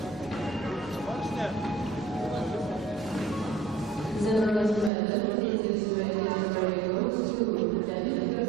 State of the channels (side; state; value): left; drops out; at 4.9 s